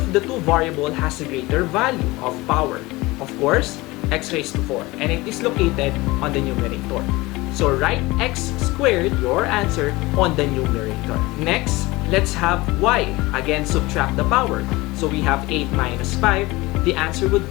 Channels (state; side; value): quieter; right; 21.3 dB